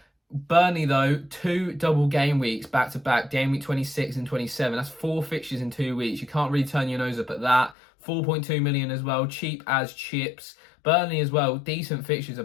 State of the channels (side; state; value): right; drops out; at 7.8 s